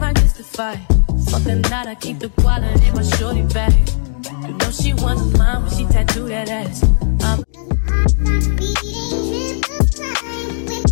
mystify. Fuck the night, I keep the wallet in my shorty bag. You know she want mine when she tattoo that ass.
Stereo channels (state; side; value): silent; right; digital silence